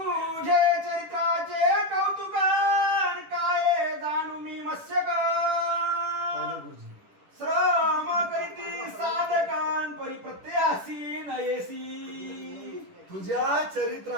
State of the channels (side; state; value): left; late; 10 ms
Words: चरित्राचे कौतुकान काय जाणू मी मत्स्यक. श्रम करीती साधकान परिप्रत्यासी नयेसी. तुझ्या